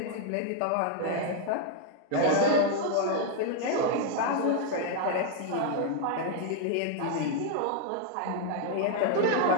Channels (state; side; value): different; both; correlation 0.00